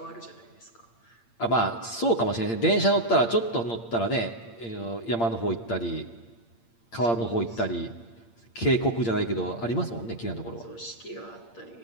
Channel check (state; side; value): late; right; 8.7 ms